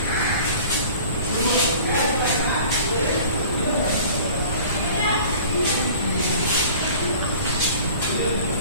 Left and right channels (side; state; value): both; inverted; correlation -0.45